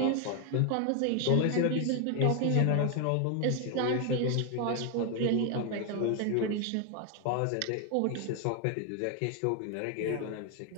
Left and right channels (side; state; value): both; different; correlation 0.01